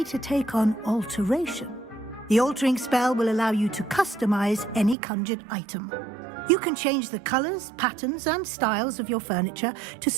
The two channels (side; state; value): left; drops out; at 5.0 s